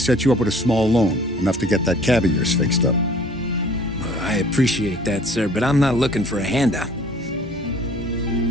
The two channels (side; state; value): both; normal; correlation 0.52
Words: you up with a small loan, enough to get that cab of yours fixed up. I appreciate that, sir, but I'm not looking for a handout.